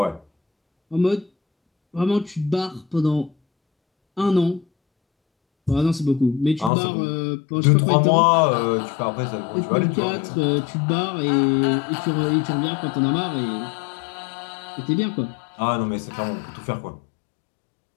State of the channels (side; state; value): right; drops out; at 6.7 s